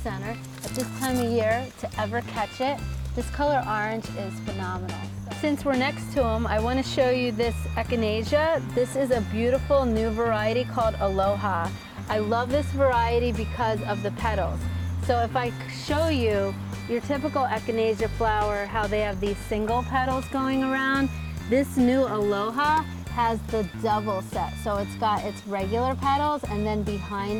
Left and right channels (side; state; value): both; identical; correlation 1.00